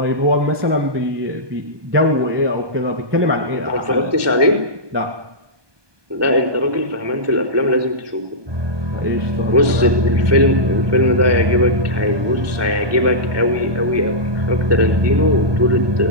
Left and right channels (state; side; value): late; left; 1.2 ms